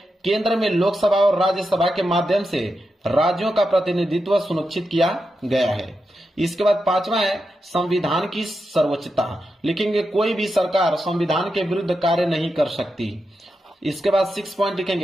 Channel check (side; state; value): both; normal; correlation 0.88